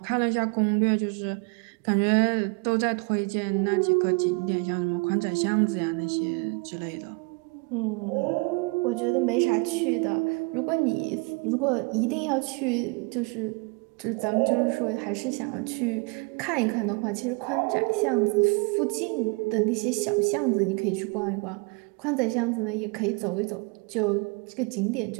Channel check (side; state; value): left; quieter; 31.1 dB